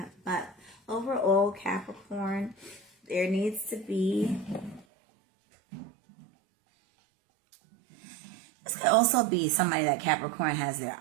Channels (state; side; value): drops out; left; at 4.9 s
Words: But overall, Capricorn, there needs to be... This could also be somebody that Capricorn has their